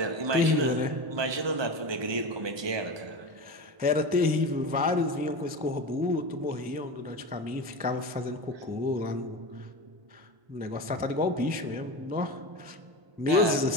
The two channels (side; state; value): left; late; 1.2 ms